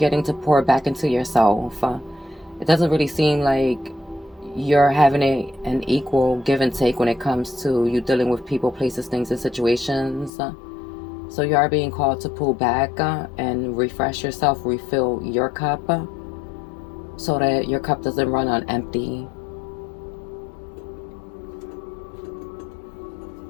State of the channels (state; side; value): drops out; right; at 10.3 s